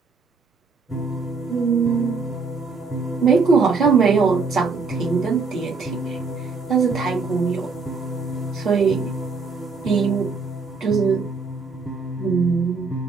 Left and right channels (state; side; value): quieter; left; 4.5 dB